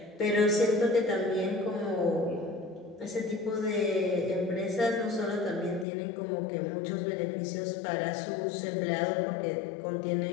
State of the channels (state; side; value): drops out; right; at 5.9 s